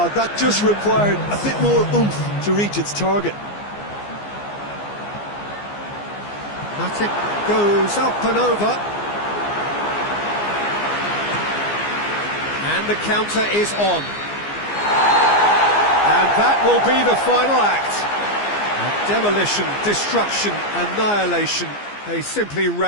that just required a bit more oomph to reach its target. Matic goes up and over. And the counter is on. And that will be the final act. Demolition, destruction, annihilation. They simply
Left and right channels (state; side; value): late; right; 15 ms